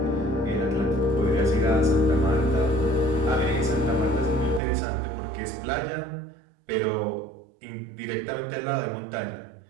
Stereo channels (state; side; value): drops out; left; at 4.6 s